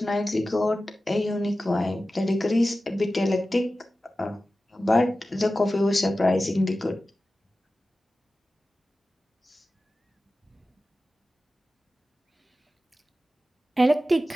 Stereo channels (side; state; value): both; normal; correlation 0.94